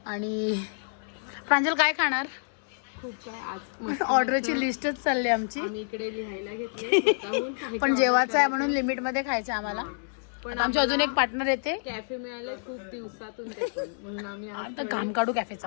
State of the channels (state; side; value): silent; right; digital silence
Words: आणि प्रांजल काय खाणार? खूप काय आज ऑर्डरची लिस्टच चालली आमची. आम्ही इकडे लिहायला घेतले. पण जेवायचं आहे म्हणून लिमिटमध्ये खायचं आम्हाला. पण आमची अजून एक पार्टनर येते. कॅफे मिळाले खूप दिवसातून ते पण. म्हणून आम्ही आता काम काढू